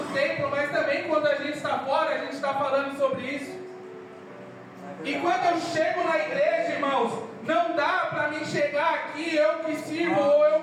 templo, mas também quando a gente está fora, a gente está falando sobre isso. E quando eu chego na igreja, irmãos, não dá para mim chegar aqui, eu que sirvo ou eu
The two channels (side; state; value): both; identical; correlation 1.00